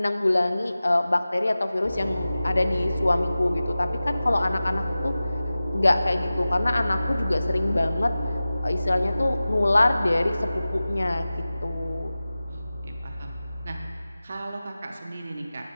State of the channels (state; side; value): inverted; both; correlation -0.96